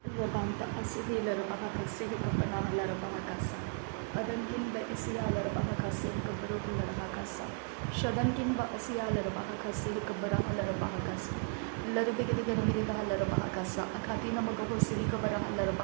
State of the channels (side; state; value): left; quieter; 39.1 dB